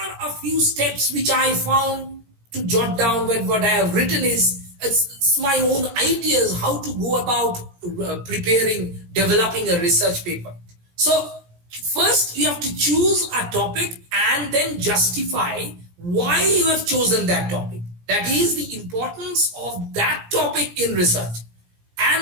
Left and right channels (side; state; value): left; late; 17 ms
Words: a few steps which I found to jot down when what I have written is it's my own ideas how to go about developing a research paper. So first you have to choose a topic and then justify why you have chosen that topic. That is the importance of that topic in research.